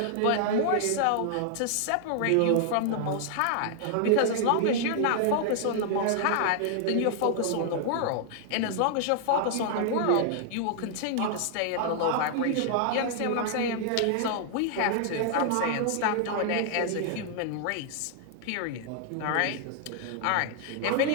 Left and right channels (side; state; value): both; different; correlation 0.00